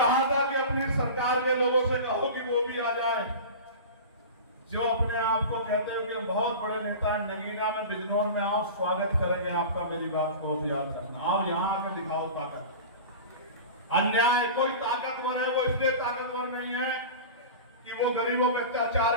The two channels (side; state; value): both; inverted; correlation -0.33